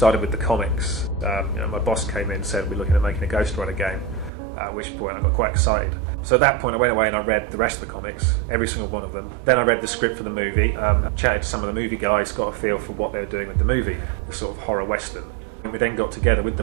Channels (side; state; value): left; drops out; at 4.3 s